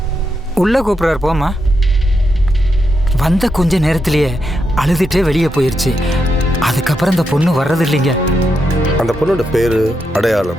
உள்ள கூப்பிடுறாரு, போமா. வந்த கொஞ்ச நேரத்திலேயே அழுதுட்டே வெளியே போயிருச்சு. அதுக்கப்புறம் அந்த பொண்ணு வர்றது இல்லைங்க. அந்த பொண்ணோட பேரு,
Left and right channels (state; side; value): normal; both; correlation 0.84